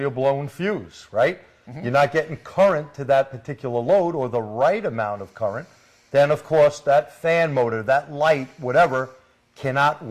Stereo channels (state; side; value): identical; both; correlation 1.00